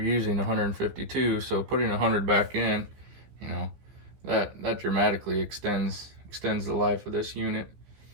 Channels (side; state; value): left; late; 15 ms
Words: 152. So putting 100 back in, you know, that dramatically extends the life of this unit.